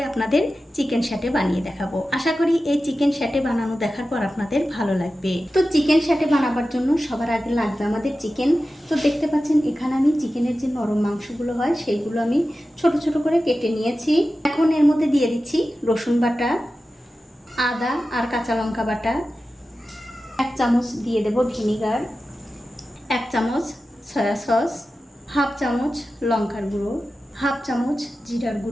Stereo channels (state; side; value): normal; both; correlation 0.93